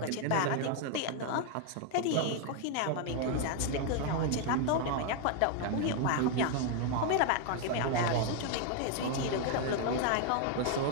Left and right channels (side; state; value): both; different; correlation 0.00